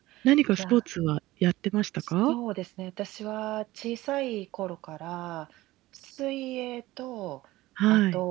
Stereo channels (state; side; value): quieter; left; 17.8 dB